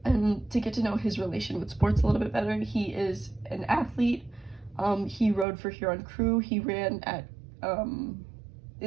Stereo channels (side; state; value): left; drops out; at 5.5 s